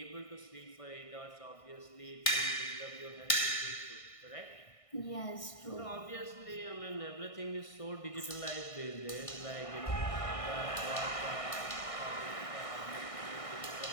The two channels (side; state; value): right; late; 1.6 ms